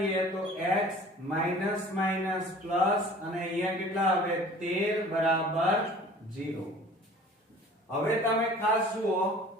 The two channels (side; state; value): both; normal; correlation 0.47